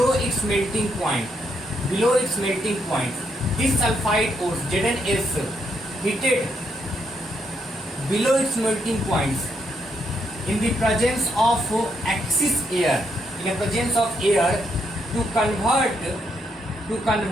its melting point. Below its melting point, this sulfide ores ZnS heated below its melting points in the presence of excess air. In the presence of air to convert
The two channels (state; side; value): normal; both; correlation 0.77